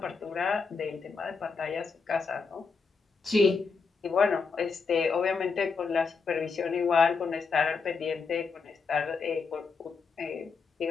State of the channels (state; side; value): quieter; right; 4.9 dB